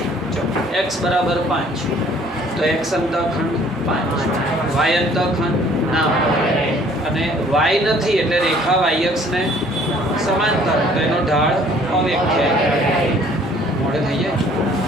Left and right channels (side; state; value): both; normal; correlation 0.57